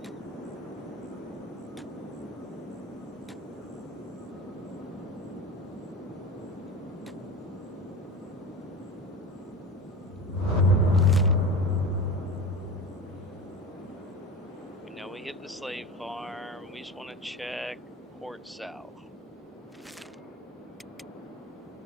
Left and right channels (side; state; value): both; normal; correlation 0.30